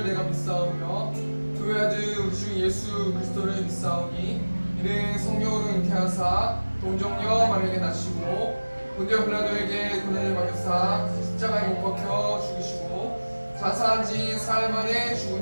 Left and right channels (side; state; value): both; inverted; correlation -1.00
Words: 내가 믿사오며 그 아들 우리 주 예수 그리스도를 믿사오니 이는 성령으로 잉태하사 동정녀 마리아에게 낳으시고 본디오 빌라도에게 고난을 받으사 십자가에 못 박혀 죽으시고 자사한 지 사흘 만에